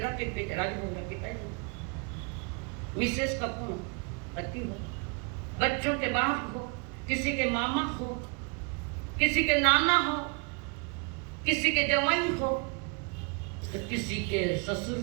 के पिता राजभोग पिताजी, मिसेस का पति हो, बच्चों के बाप हो, किसी के मामा हो, किसी के नाना हो, किसी के जवाई हो, तो किसी के ससुर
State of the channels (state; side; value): quieter; left; 33.7 dB